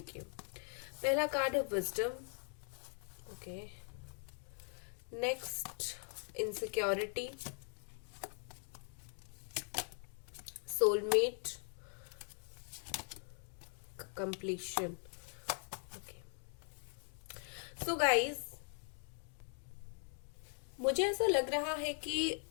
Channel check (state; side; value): silent; right; 50 dB below the other